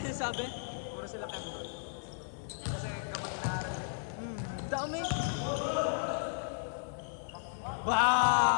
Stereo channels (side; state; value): right; silent; digital silence